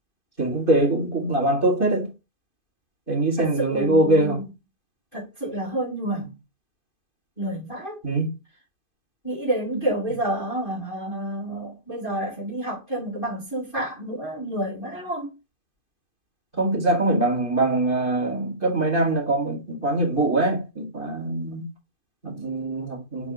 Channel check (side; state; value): right; late; 2.5 ms